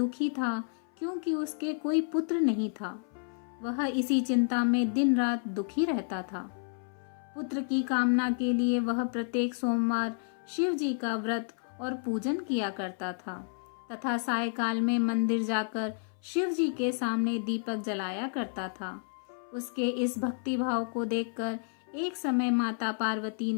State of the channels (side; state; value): right; silent; 57 dB below the other